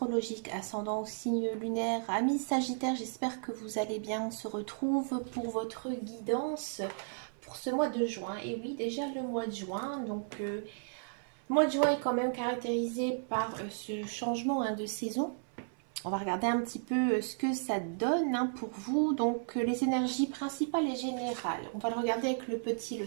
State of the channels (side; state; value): left; silent; 55 dB below the other